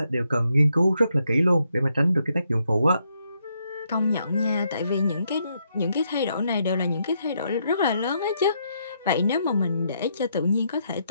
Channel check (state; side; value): inverted; both; correlation -0.77